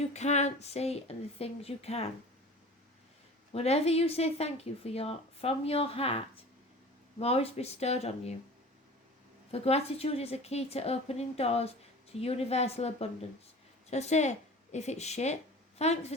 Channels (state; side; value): normal; both; correlation 0.40